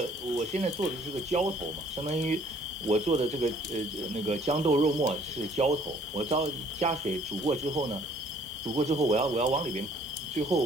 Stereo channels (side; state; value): both; normal; correlation 0.59